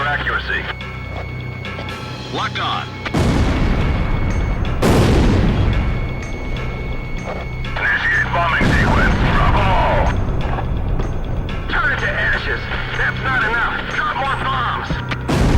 accuracy. Locked on. Initiate bombing sequence. Drop all! Turn it to ashes. That's not enough. Drop more bombs.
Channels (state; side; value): identical; both; correlation 1.00